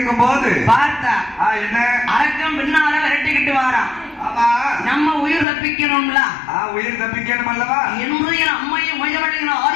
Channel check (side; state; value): right; drops out; at 5.5 s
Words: போது பார்த்தா என்ன அரக்கம் பின்னால விரட்டிக்கிட்டு வாரான். நம்ம உயிர் தப்பிக்கணும்ல, உயிர் தப்பிக்கணும் அல்லவா என்று என் அம்மையும் முயவழியின்